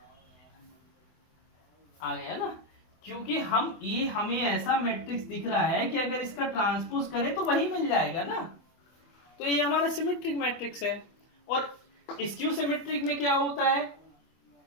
आ गया ना, क्योंकि हमें ऐसा मैट्रिक्स दिख रहा है कि अगर इसका ट्रांसपोज करें तो वही मिल जाएगा ना। तो ये हमारा सिमेट्रिक मैट्रिक्स है। और स्क्यू सिमेट्रिक में क्या होता है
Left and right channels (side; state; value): right; late; 24 ms